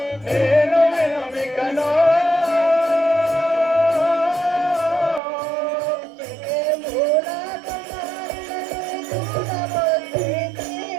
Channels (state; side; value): drops out; left; at 5.2 s